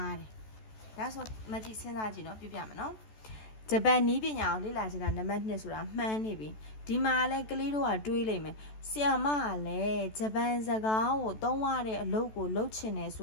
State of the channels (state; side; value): late; right; 14 ms